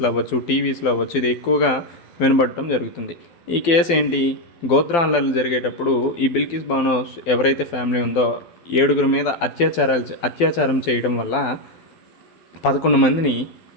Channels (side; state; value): right; late; 12 ms